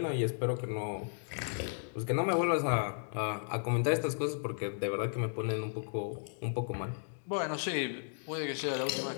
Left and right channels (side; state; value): right; silent; digital silence